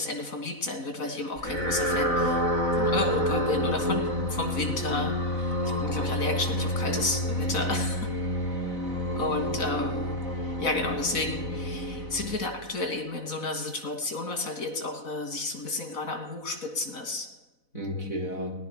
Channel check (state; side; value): late; right; 4.0 ms